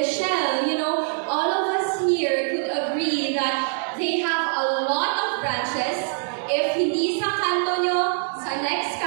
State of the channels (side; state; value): left; silent; digital silence